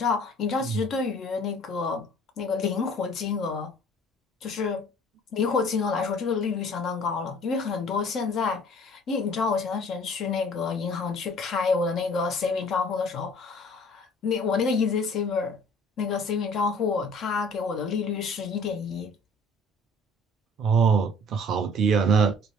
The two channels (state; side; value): normal; both; correlation 0.51